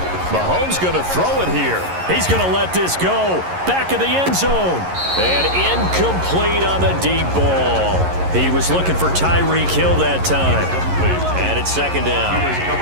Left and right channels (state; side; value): late; left; 11 ms